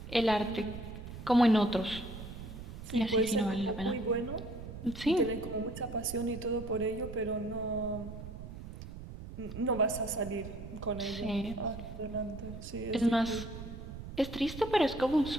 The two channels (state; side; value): noise; right; rumble, 11 dB below the sound